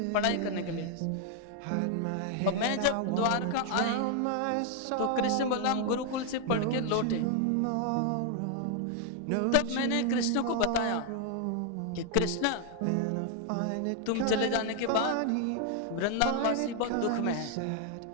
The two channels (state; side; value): different; both; correlation 0.00